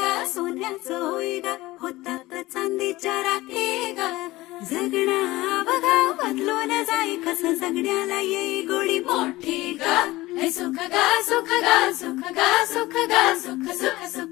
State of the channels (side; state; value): right; quieter; 19.0 dB